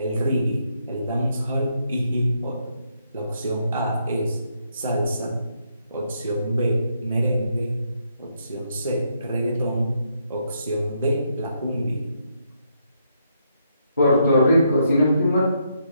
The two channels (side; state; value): both; inverted; correlation -0.77